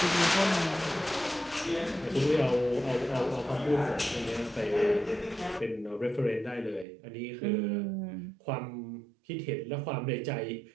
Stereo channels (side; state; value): left; drops out; at 6.9 s